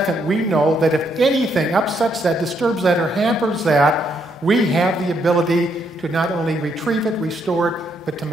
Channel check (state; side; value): normal; both; correlation 0.74